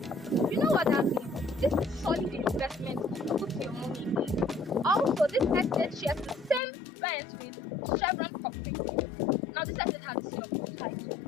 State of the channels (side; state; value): right; drops out; at 6.6 s